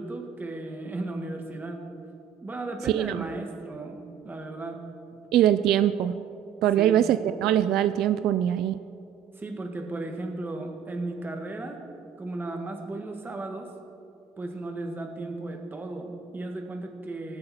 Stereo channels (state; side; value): quieter; left; 8.4 dB